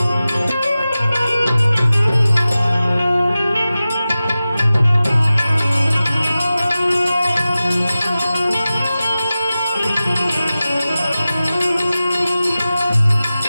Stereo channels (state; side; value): inverted; both; correlation -0.95